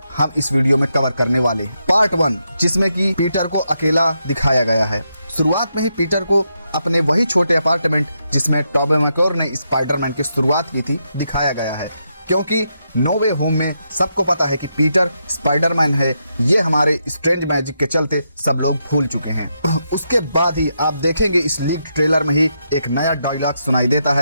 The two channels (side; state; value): both; inverted; correlation -0.82